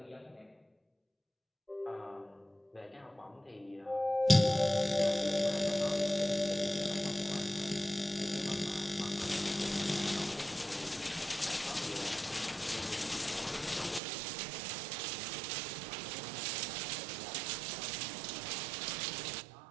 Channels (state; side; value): drops out; left; at 14.0 s